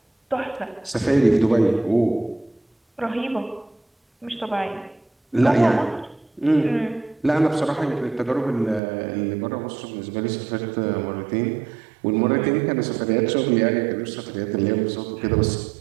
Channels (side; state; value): left; drops out; at 8.8 s